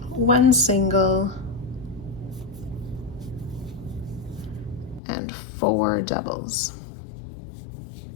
1 single, and 4 doubles.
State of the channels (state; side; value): drops out; right; at 5.0 s